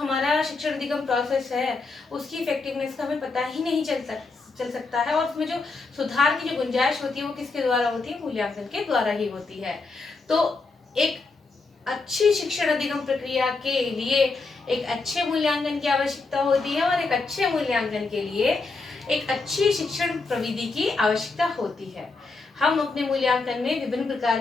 शिक्षण अधिगम प्रोसेस है उसकी इफेक्टिवनेस का हमें पता ही नहीं चल सकता है, और उसमें जो सुधार की जो गुंजाइश होती है वो किसके द्वारा होती है? मूल्यांकन के द्वारा ही होती है। तो एक अच्छी शिक्षण अधिगम प्रक्रिया के लिए एक अच्छे मूल्यांकन की आवश्यकता होती है, और एक अच्छे मूल्यांकन के लिए एक अच्छी शिक्षण प्रविधि की आवश्यकता होती है। हम अपने मूल्यांकन में विभिन्न प्रकार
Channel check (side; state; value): right; quieter; 3.9 dB